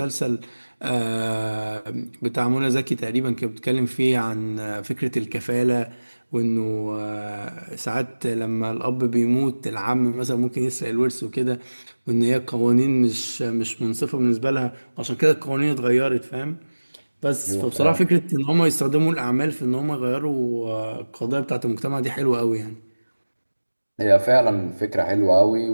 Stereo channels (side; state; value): both; inverted; correlation -1.00